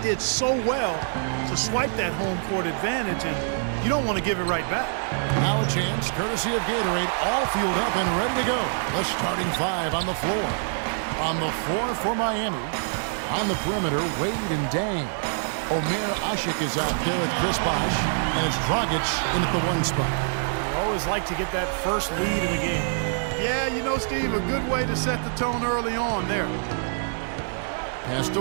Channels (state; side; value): silent; left; digital silence